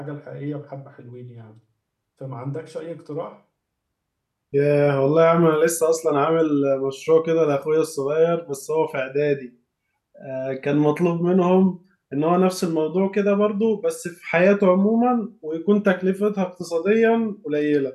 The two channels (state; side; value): identical; both; correlation 1.00